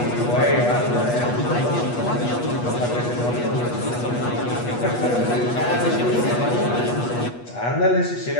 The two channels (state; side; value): late; right; 8.3 ms